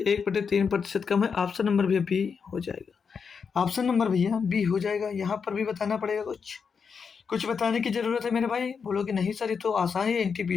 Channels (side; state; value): right; quieter; 6.0 dB